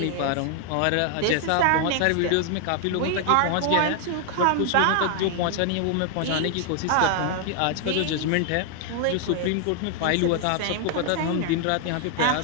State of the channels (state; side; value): different; both; correlation 0.00